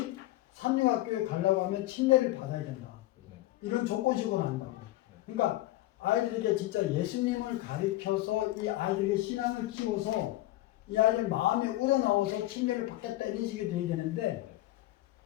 삼육학교에 가려고 하면 침례를 받아야 된다. 이런 조건식으로 한다고. 그러니까 아이들에게 진짜 예수님을 가르쳐서 이 아이들에게 신앙을 키워서 이 아이들 마음에 우러나와서 침례를 받겠다 이런 식이 돼야 되는데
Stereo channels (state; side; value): quieter; right; 16.5 dB